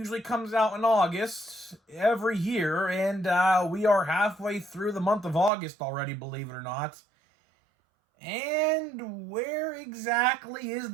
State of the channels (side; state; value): left; drops out; at 5.5 s